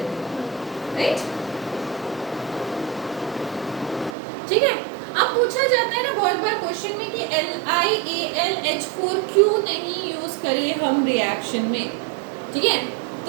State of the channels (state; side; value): drops out; left; at 4.2 s